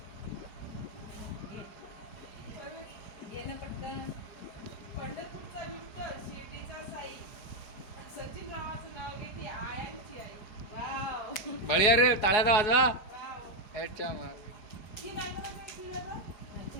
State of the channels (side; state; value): right; late; 4.8 ms